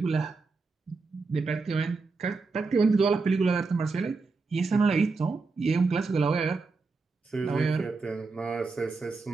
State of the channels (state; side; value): quieter; left; 4.1 dB